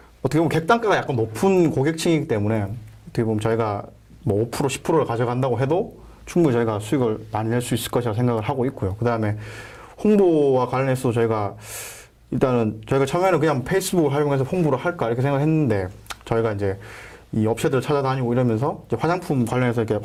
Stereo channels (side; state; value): both; identical; correlation 1.00